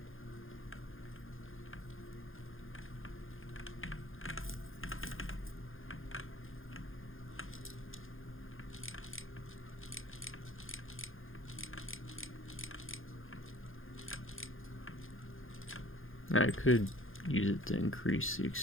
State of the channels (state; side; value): late; right; 0.59 ms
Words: I could use it to increase the